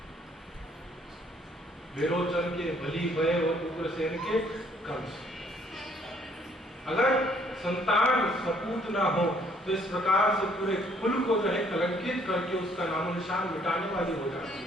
विरोचन के बलि भय और उग्रसेन के कंस। अगर संतान सपूत ना हो तो इस प्रकार से पूरे कुल को जो है कलंकित करके उसका नामो निशान मिटाने वाली हो जाती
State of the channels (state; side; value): normal; both; correlation 0.64